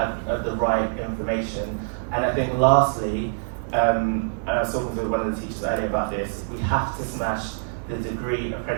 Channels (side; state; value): left; silent; digital silence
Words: the right information. And I think lastly, and I was talking to one of the teachers earlier about this, we have to smash the degree